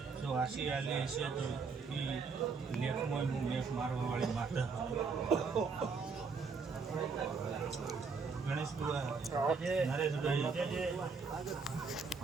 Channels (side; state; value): left; quieter; 5.0 dB